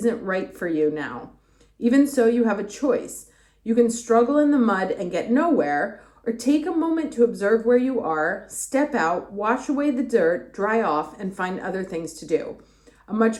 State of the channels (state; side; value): identical; both; correlation 1.00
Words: right for you now. Even so, you have a choice. You can struggle in the mud and get nowhere, or take a moment to observe where you are, step out, wash away the dirt, dry off, and find other things to do. A